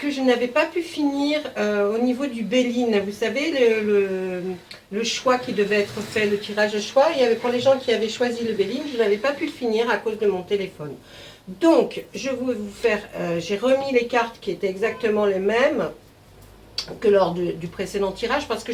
je n'avais pas pu finir au niveau du Béline. Vous savez, le choix qui devait être fait, le tirage de choix. Il y avait pour les gens qui avaient choisi le Béline, je n'avais pas pu le finir à cause de mon téléphone. Donc, je vais vous faire, j'ai remis les cartes qui étaient exactement les mêmes que lors du précédent tirage, parce que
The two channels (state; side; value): identical; both; correlation 1.00